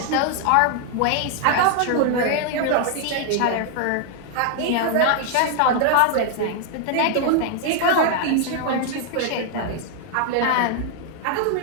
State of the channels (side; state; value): both; different; correlation 0.00